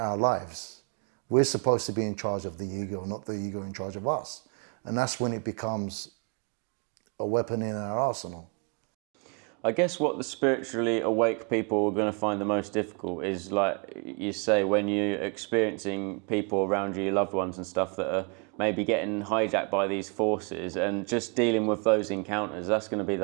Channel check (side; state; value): left; quieter; 35.3 dB